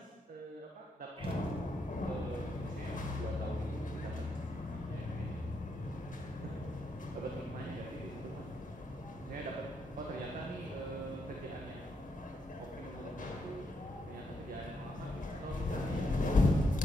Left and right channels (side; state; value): both; normal; correlation 0.79